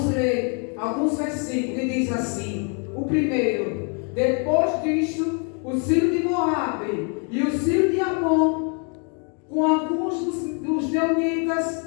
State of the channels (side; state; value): right; quieter; 38.8 dB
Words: ler alguns versículos que diz assim. O primeiro: depois disto, os filhos de Moabe e os filhos de Amon, com alguns dos Meunitas,